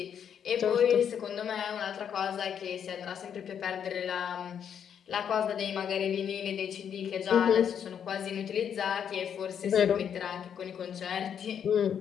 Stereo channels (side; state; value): right; quieter; 8.3 dB